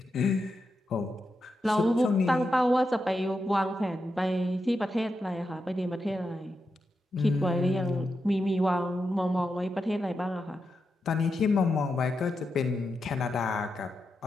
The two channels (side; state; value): both; normal; correlation 0.87